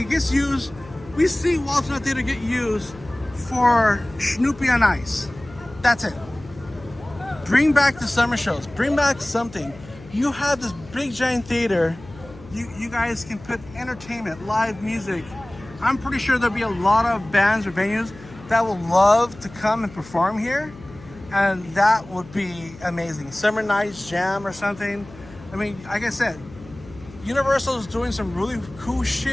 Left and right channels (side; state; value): left; noise; hum, 19 dB below the sound